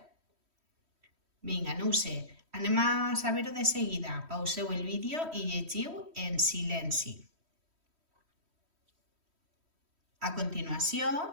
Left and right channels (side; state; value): left; late; 3.1 ms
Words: Vinga, no ho sé. Anem a saber-ho de seguida. Pauseu el vídeo i llegiu en silenci. A continuació,